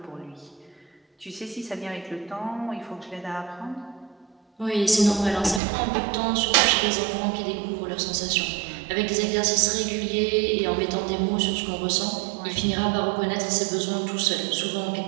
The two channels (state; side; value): drops out; left; at 5.6 s